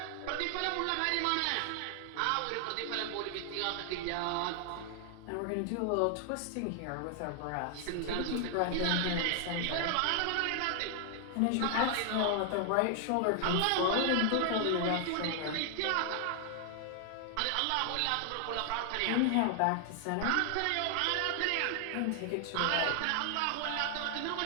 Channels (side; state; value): both; different; correlation 0.00